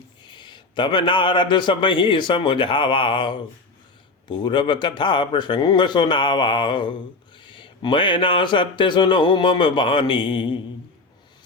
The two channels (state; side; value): quieter; right; 3.5 dB